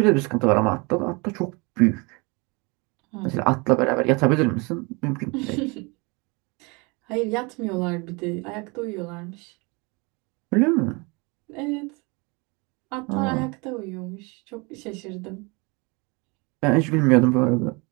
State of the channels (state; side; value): quieter; left; 28.5 dB